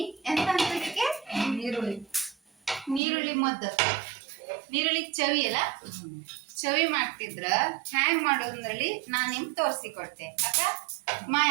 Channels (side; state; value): left; drops out; at 3.0 s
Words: ಎಂತ ಅಂತದಕ್ಕೆ ನೀರುಳ್ಳಿ ಮದ್ದು, ನೀರುಳ್ಳಿ ಚವಿ ಅಲ್ಲ, ಚವಿ ಮಾಡ್ತಿದ್ರ ಹ್ಯಾಂಗ್ ಮಾಡೋದ್ರಲ್ಲಿ ನಾನು ನಿಮ್ಗೆ ತೋರಿಸಿಕೊಡ್ತೆ. ಅಕ್ಕ ಮಾಯ,